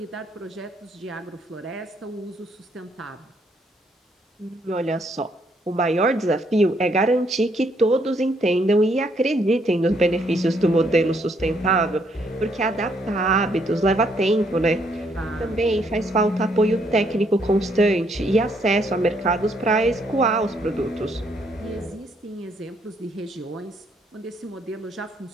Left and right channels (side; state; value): both; normal; correlation 0.71